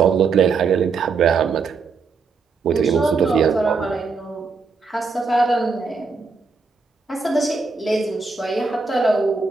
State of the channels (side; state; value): left; quieter; 4.7 dB